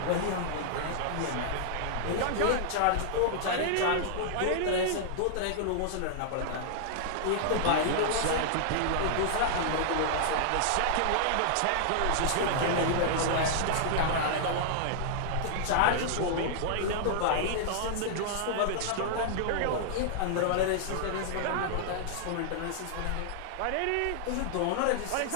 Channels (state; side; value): different; both; correlation -0.01